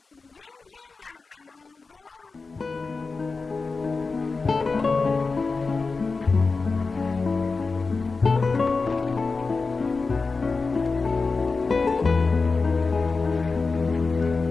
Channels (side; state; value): right; quieter; 4.2 dB